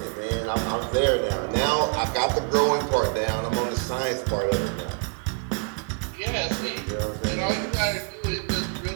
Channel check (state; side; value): quieter; left; 39.2 dB